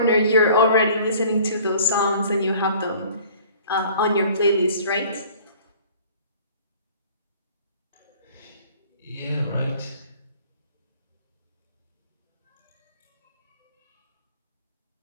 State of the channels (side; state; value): both; inverted; correlation -0.50